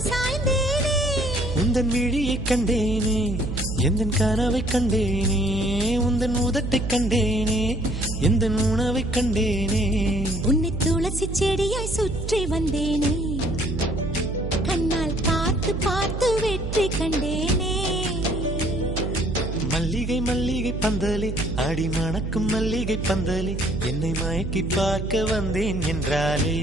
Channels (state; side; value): noise; right; hum, 5 dB below the sound